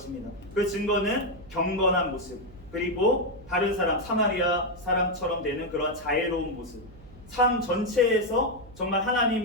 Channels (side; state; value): right; noise; hum, 21 dB below the sound